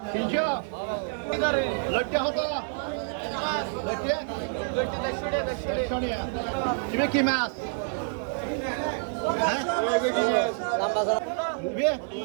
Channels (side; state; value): left; silent; 60 dB below the other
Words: 300 লটকে কত? লটকে 150 তুমি কি মাছ? হ্যাঁ